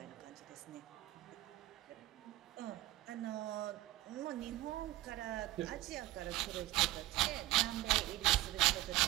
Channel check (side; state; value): left; quieter; 16.7 dB